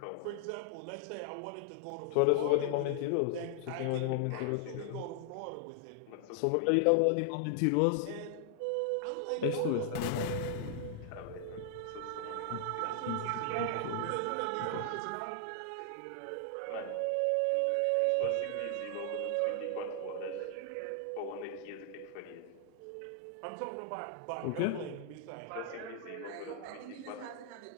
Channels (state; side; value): different; both; correlation 0.00